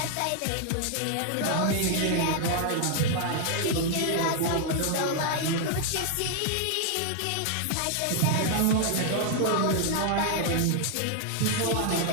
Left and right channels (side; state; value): both; different; correlation 0.00